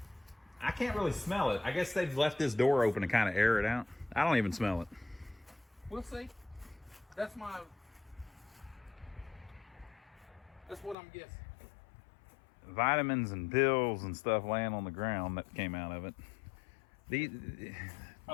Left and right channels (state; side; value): drops out; right; at 11.0 s